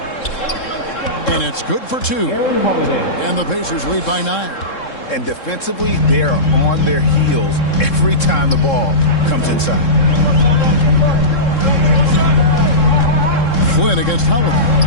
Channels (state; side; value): late; right; 3.7 ms